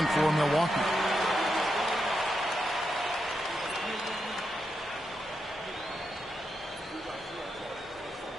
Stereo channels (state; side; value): normal; both; correlation 0.85